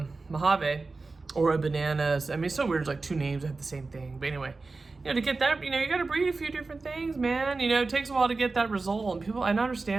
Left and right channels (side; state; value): left; quieter; 3.8 dB